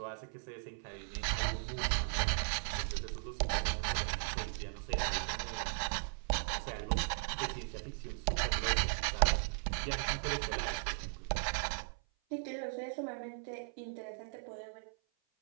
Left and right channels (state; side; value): silent; left; 53 dB below the other